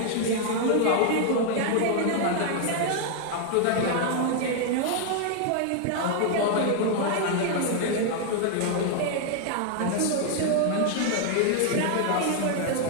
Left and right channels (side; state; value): both; different; correlation 0.00